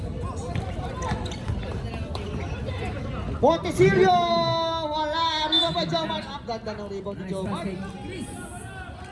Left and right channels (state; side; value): identical; both; correlation 1.00